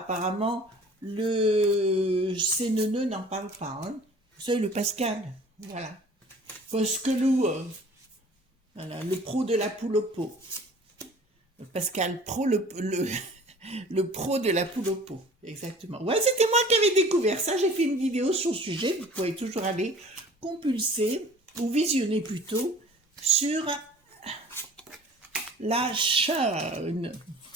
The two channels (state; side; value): normal; both; correlation 0.48